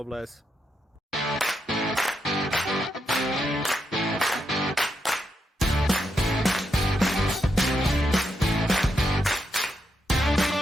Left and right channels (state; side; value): normal; both; correlation 0.82